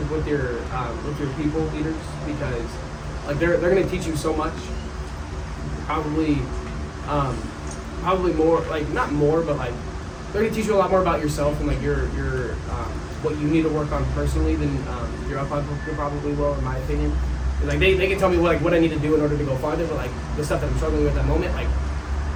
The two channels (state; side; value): identical; both; correlation 1.00